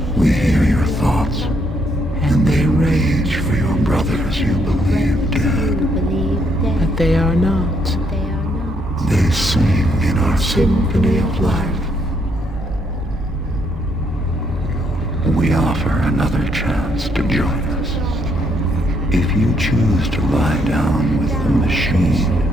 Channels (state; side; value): normal; both; correlation 0.73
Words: We hear your thoughts, and they rage for your brothers you believe dead. But they are not. They sing in our symphony of life. We offer another chance to join us. If you choose to lie down with the machine,